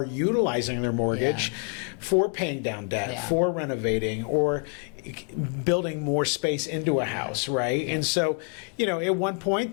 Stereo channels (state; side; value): quieter; right; 39.1 dB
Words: utilizing their mortgage for paying down debt, for renovating, or building more space into a house, right? And so, at one point